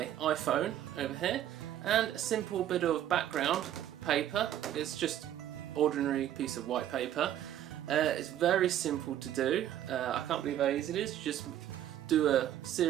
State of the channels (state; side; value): quieter; left; 11.6 dB